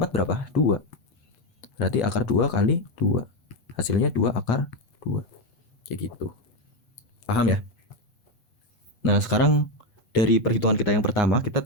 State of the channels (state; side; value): late; right; 8.2 ms